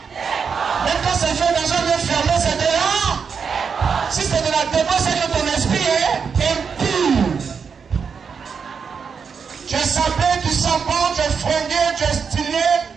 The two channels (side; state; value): left; quieter; 6.1 dB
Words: Même quand c'est fait dans un lieu fermé, c'est de la... Si c'est de la débauche, c'est que ton esprit est impur. Tu es sapé, tu sens bon, tu es fringué, tu es stylé,